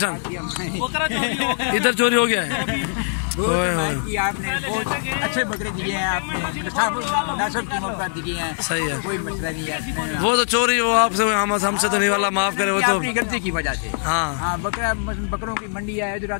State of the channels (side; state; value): right; silent; digital silence